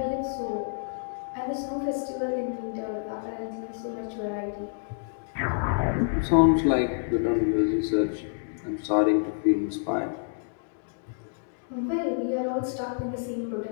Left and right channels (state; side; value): silent; right; digital silence